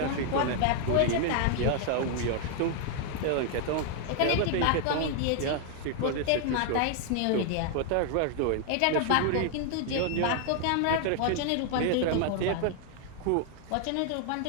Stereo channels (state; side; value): different; both; correlation 0.00